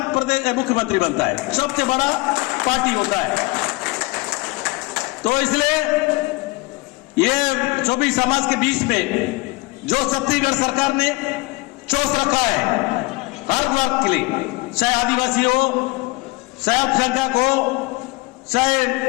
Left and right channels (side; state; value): right; quieter; 24.0 dB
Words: प्रदेश मुख्यमंत्री बनता है, सबसे बड़ा पार्टी होता है। तो इसलिए ये सभी समाज के बीच में जो छत्तीसगढ़ सरकार ने चोस रखा है हर वर्ग के लिए, चाहे आदिवासी हो, चाहे अल्पसंख्यक हो, चाहे